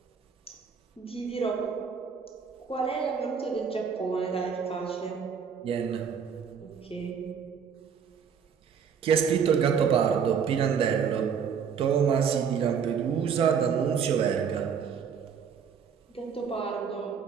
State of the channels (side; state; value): left; quieter; 6.9 dB